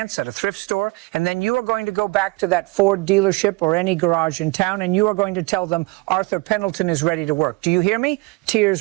at a thrift store. And then you are going to go back to that Ford dealership or any garage in town. And you are going to tell them Arthur Pendleton is ready to work. Do you hear me?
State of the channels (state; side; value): quieter; left; 25.7 dB